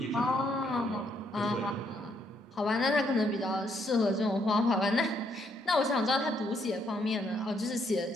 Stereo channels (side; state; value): both; normal; correlation 0.72